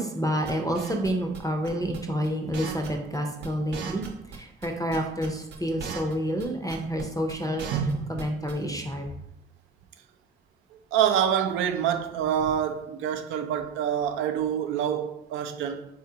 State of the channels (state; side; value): quieter; left; 3.9 dB